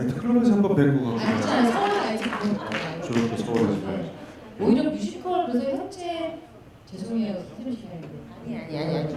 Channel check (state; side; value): identical; both; correlation 1.00